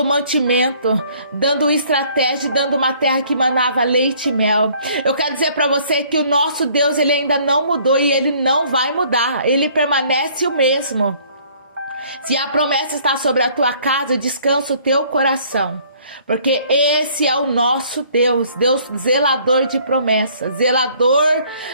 mantimento, dando estratégia, dando uma terra que manava leite e mel. Eu quero dizer para você que o nosso Deus, Ele ainda não mudou e Ele não vai mudar. Ele permanece o mesmo. Se a promessa está sobre a tua casa, descansa o teu coração. Porque esse é o nosso Deus, Deus zelador de promessas, zelador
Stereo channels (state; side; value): inverted; both; correlation -0.58